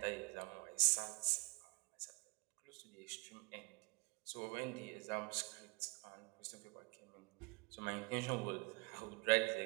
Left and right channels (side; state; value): left; quieter; 27.5 dB